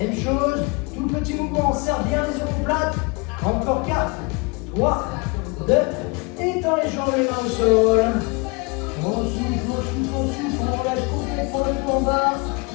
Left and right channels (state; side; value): quieter; right; 29.1 dB